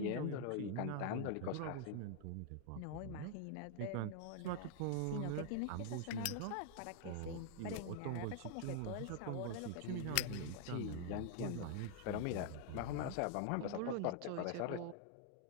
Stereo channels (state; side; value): different; both; correlation 0.00